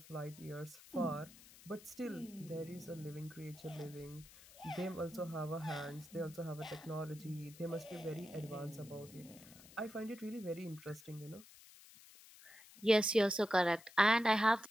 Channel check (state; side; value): noise; left; hiss, 20 dB below the sound